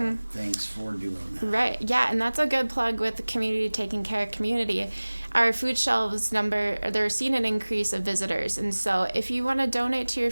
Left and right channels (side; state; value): both; inverted; correlation -1.00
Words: thanks for doing that. Right. Yeah, and that's a good plug with the community taking care of community. Our food shelves they're seeing an increase of visitors. And so if you want to donate to your